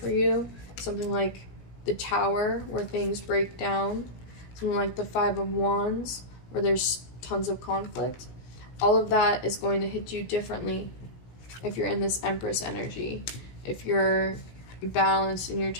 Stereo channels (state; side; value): late; right; 17 ms